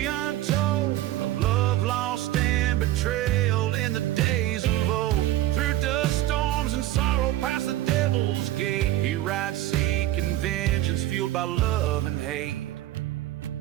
untold of love lost and betrayal in the days of old. Through dust storms and sorrow past the devil's gate, he rides seeking vengeance fueled by love and hate.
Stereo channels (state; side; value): quieter; left; 14.7 dB